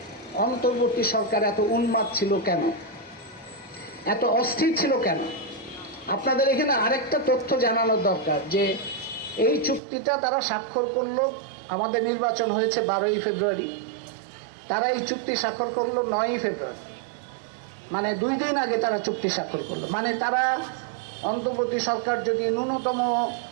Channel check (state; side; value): drops out; left; at 9.8 s